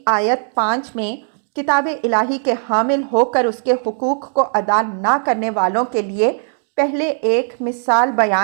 آیت 5 میں کتاب الہی کے حامل ہو کر اس کے حقوق کو ادا نہ کرنے والوں کے لیے پہلے ایک مثال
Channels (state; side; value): silent; left; digital silence